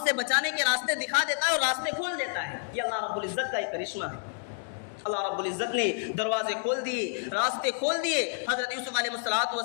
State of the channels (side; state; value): right; silent; digital silence